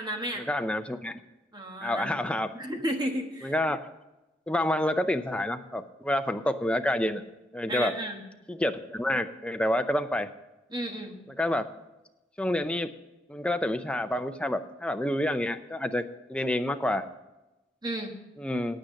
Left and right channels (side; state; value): both; normal; correlation 0.80